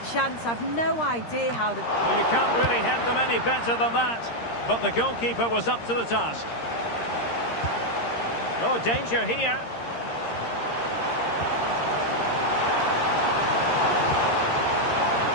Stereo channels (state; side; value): late; right; 13 ms